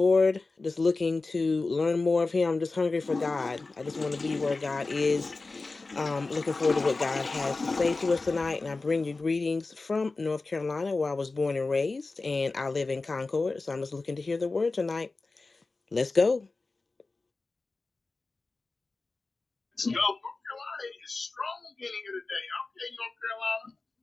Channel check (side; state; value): right; quieter; 3.6 dB